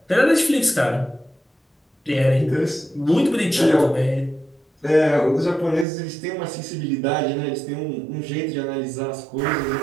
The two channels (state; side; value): drops out; left; at 5.9 s